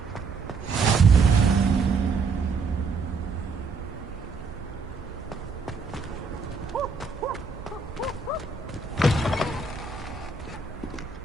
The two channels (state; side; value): quieter; left; 4.3 dB